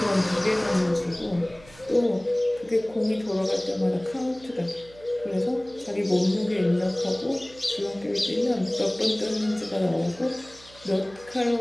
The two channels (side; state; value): right; noise; hum, 23 dB below the sound